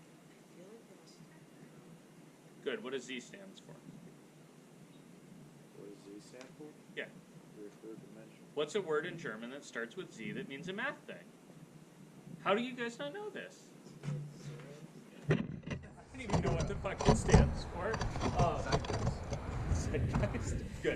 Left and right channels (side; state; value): both; identical; correlation 1.00